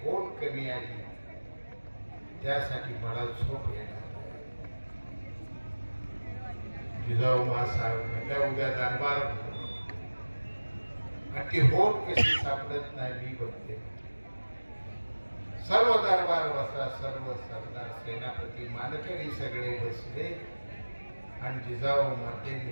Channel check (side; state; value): both; inverted; correlation -1.00